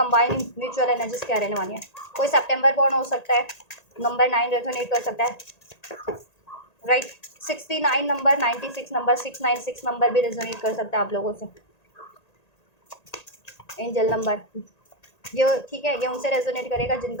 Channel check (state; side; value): late; right; 1.8 ms